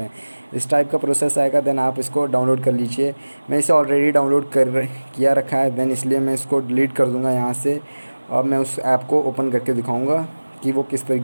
हैं। इस टाइप का प्रोसेस आएगा, देन आप इसको डाउनलोड कर लीजिए। मैं इसे ऑलरेडी डाउनलोड किया रखा है, देन इसलिए मैं इसको डिलीट कर दूँगा यहाँ से, और मैं उस ऐप को ओपन करके दिखाऊँगा कि वो किस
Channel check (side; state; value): both; inverted; correlation -1.00